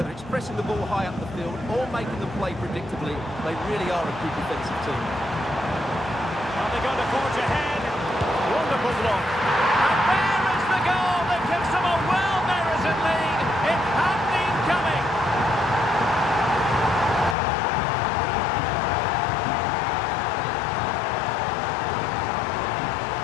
it's pressing the ball high up the field or making them play predictably, they really are a good defensive team. Are they going to forge ahead? Wonderful block. And there is the goal that gives them a well-merited lead. It had been coming.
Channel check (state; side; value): drops out; right; at 17.4 s